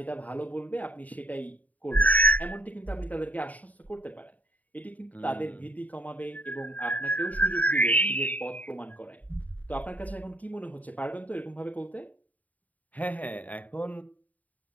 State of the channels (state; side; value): late; right; 0.073 ms